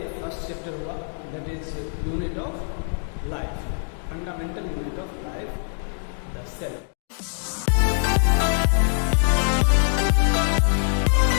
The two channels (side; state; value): right; silent; 63 dB below the other